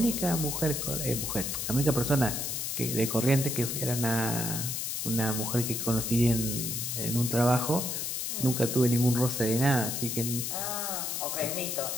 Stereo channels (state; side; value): noise; left; hiss, 2 dB below the sound